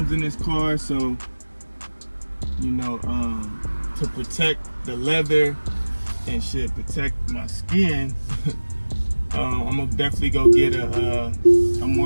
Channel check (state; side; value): inverted; both; correlation -1.00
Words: in this car. So, you know, to protect the leather and shit, protect my skin, I'm gonna definitely go get a